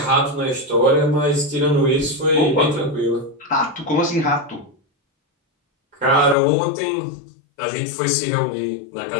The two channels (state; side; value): drops out; right; at 6.4 s